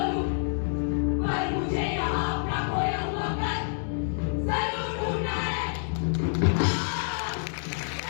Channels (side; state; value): right; silent; digital silence